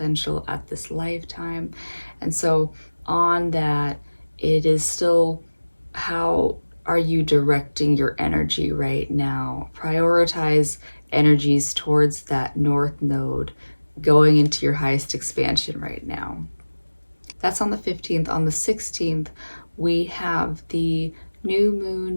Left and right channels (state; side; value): inverted; both; correlation -1.00